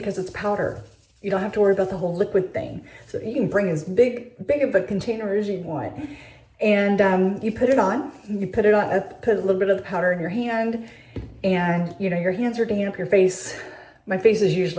it's powder. You don't have to worry about the whole liquid thing. So you can bring as big of a container as you want. And you put it on, put a little bit of the powder in your hand, and you know, your hands are damp, my face is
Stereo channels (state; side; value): identical; both; correlation 1.00